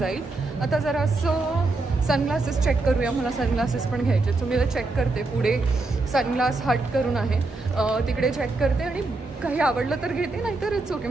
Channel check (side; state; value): left; quieter; 3.3 dB